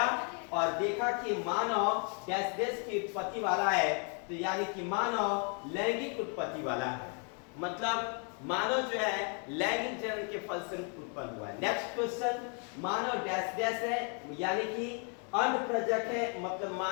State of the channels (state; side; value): quieter; right; 39.5 dB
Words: और देखा कि मानव डैश डैश की उत्पत्ति वाला है, तो यानी कि मानव लैंगिक उत्पत्ति वाला है, मतलब मानव जो है लैंगिक जनन के फलस्वरूप उत्पन्न हुआ है। नेक्स्ट क्वेश्चन, मानव डैश डैश है, यानी कि अंड प्रजक है, मतलब